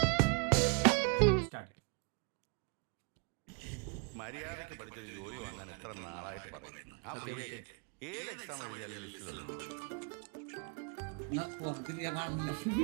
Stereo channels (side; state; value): left; quieter; 35.6 dB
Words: മര്യാദയ്ക്ക് പഠിച്ചൊരു ജോലി വാങ്ങാൻ എത്ര നാളായിട്ട് പറയുന്നു. ആ പ്രിയക്ക് ഏത് എക്സാം എഴുതിയാലും ലിസ്റ്റിലല്ലോ.